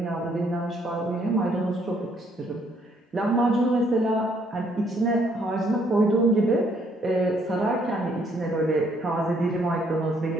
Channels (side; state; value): both; normal; correlation 0.67